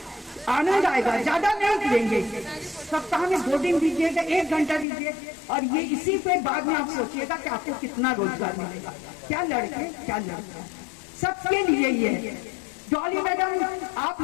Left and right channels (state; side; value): drops out; right; at 4.9 s